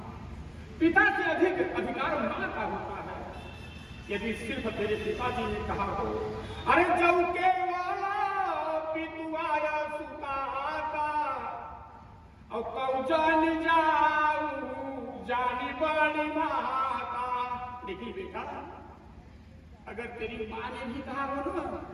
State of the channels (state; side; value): identical; both; correlation 1.00